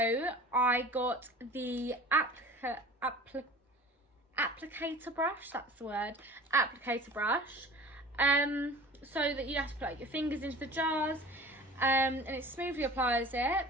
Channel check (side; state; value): both; normal; correlation 0.41